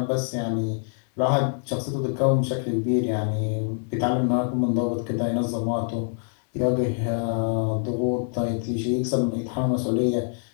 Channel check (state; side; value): silent; right; 62 dB below the other